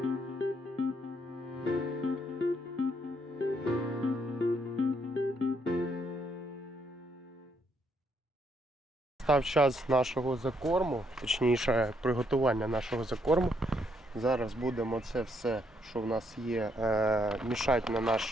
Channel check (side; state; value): both; normal; correlation 0.73